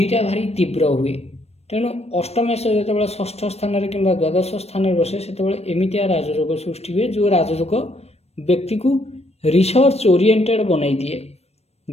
ଭାରି ତୀବ୍ର ହୁଏ। ତେଣୁ ଅଷ୍ଟମେଶ ଯେତେବେଳେ ଷଷ୍ଠ ସ୍ଥାନରେ କିମ୍ବା ଦ୍ୱାଦଶ ସ୍ଥାନରେ ବସେ ସେତେବେଳେ ଏମିତିଆ ରାଜଯୋଗ ସୃଷ୍ଟି ହୁଏ ଯେଉଁ ରାଜଯୋଗ ବ୍ୟକ୍ତିକୁ ରିସର୍ଚ୍ଚ ଓରିଏଣ୍ଟେଡ଼ ବନାଇ ଦିଏ।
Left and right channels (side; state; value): right; late; 0.31 ms